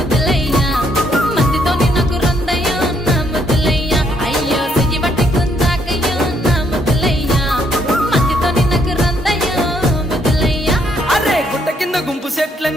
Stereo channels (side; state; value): both; normal; correlation 0.71